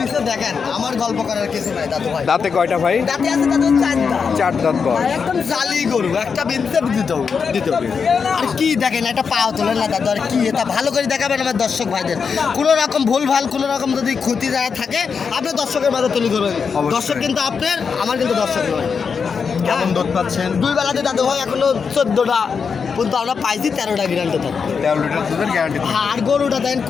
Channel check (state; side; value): quieter; right; 5.9 dB